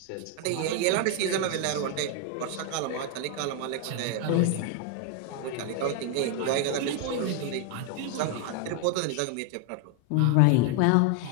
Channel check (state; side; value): different; both; correlation 0.01